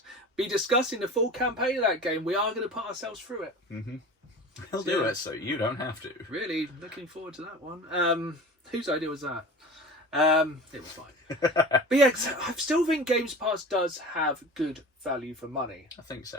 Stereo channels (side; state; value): both; normal; correlation 0.36